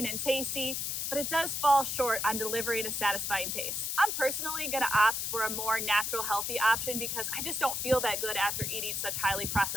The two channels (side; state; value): left; noise; hiss, 1 dB below the sound